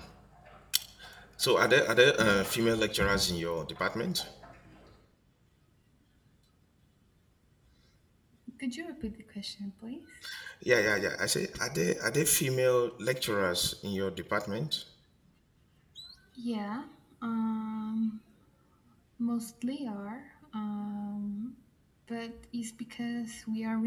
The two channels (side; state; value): both; identical; correlation 1.00